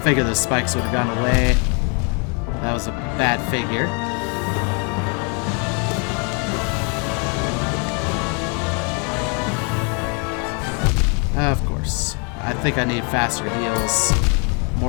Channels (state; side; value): quieter; right; 36.0 dB